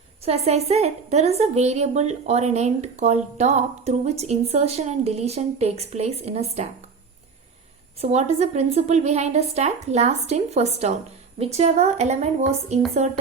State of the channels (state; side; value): quieter; left; 5.2 dB